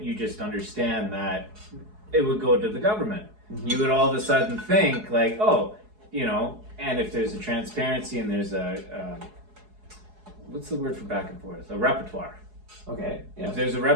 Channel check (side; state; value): left; late; 4.7 ms